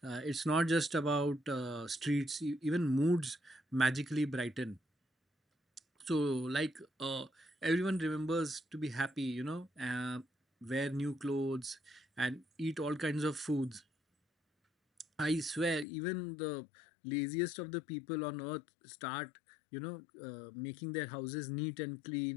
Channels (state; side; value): drops out; right; at 15.9 s